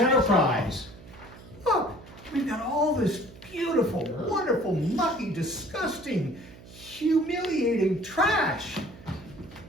Look, we've got all this beautiful, wonderful, mucky, disgusting, humiliating trash.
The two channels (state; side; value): noise; right; hum, 19 dB below the sound